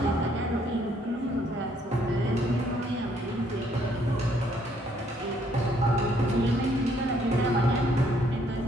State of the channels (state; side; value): normal; both; correlation 0.67